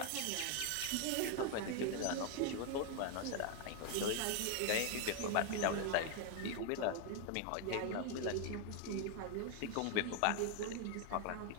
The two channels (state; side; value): different; both; correlation 0.00